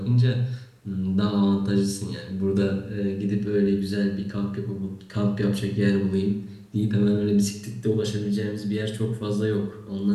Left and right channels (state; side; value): identical; both; correlation 1.00